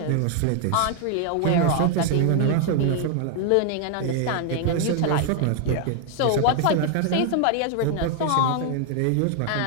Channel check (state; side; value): different; both; correlation 0.00